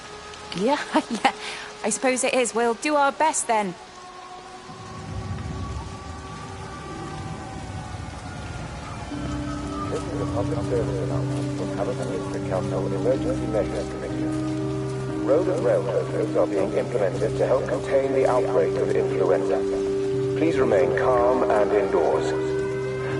Yeah, yeah. I suppose it is. We'll do our best, then. This is a public service announcement from Hamilton Council Emergency Measures Committee. Road and rail closures are being implemented to help contain the outbreak of influenza. Please remain calm and indoors.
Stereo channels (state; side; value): identical; both; correlation 1.00